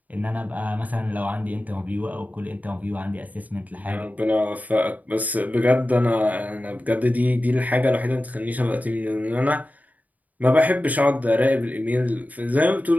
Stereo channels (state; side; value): late; left; 0.076 ms